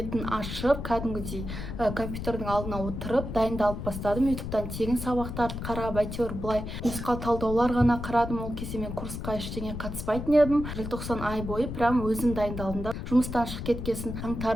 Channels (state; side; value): noise; left; rumble, 6 dB below the sound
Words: ашып, кәдімгідей компьютердің алдына отырып дайындалып бастадым. ютубтан тегін сабақтарды қарап, әйтеуір былай нұсқау талдаулар ғана қарадым. Ол кезде мен курсқа ештеңе қатыспайтын едім. Желтоқсан ай бойы прям өзім дайындалдым да. Жұмыстан шығып кеткесін